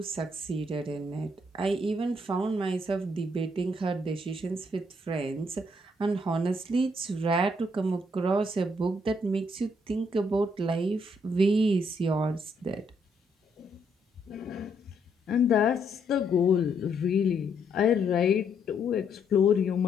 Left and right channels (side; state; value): both; normal; correlation 0.73